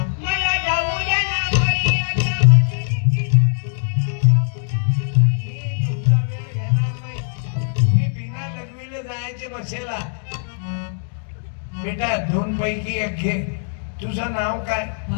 बसेला बेटा, 2 पैकी 1 घे. तुझं नाव काय?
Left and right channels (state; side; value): silent; right; digital silence